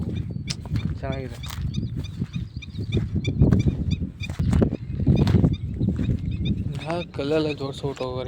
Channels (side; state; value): both; identical; correlation 1.00